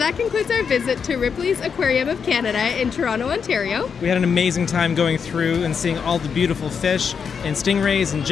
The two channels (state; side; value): quieter; right; 6.4 dB